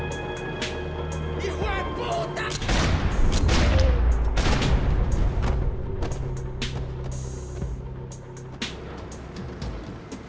¡Hijo de puta!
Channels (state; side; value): identical; both; correlation 1.00